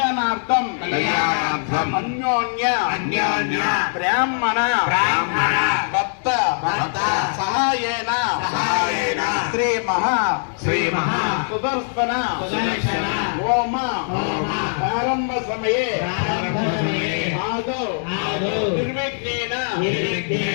అన్యోన్య బ్రాహ్మణ భక్త సహాయేన శ్రీ మహా సుదర్శన హోమ ప్రారంభ సమయే ఆదౌ నిర్విఘ్నేన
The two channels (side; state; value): right; silent; digital silence